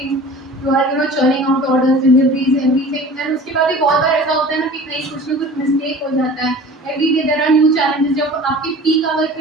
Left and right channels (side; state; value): both; normal; correlation 0.42